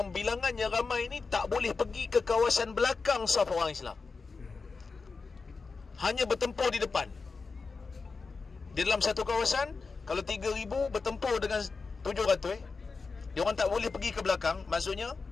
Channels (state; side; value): quieter; right; 4.5 dB